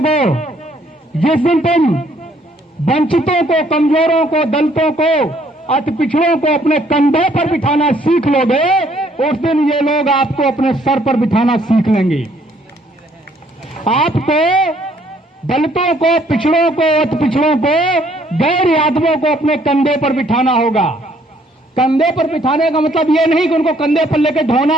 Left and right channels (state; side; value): normal; both; correlation 0.64